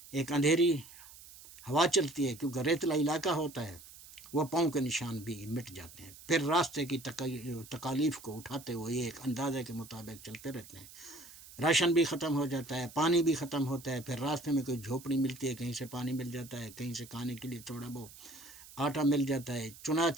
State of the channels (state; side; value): noise; right; hiss, 18 dB below the sound